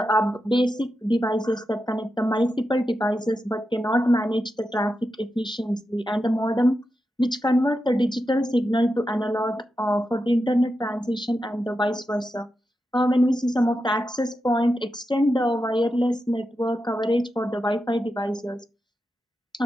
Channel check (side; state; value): both; normal; correlation 0.88